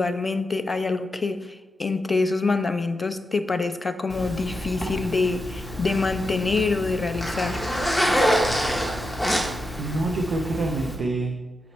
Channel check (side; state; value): both; normal; correlation 0.87